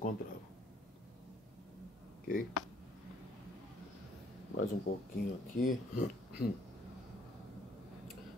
Ok? Mais um pouquinho aqui.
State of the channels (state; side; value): normal; both; correlation 0.63